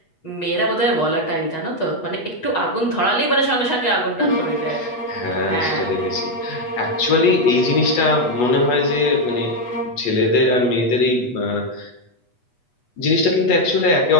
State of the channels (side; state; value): right; late; 8.2 ms